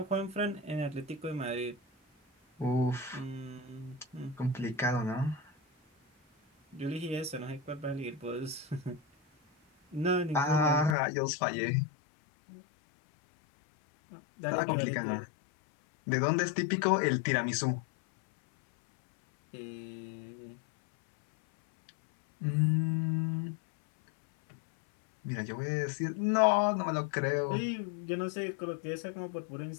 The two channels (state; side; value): drops out; right; at 11.0 s